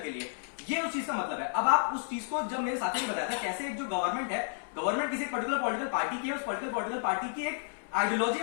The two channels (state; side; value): silent; right; 57 dB below the other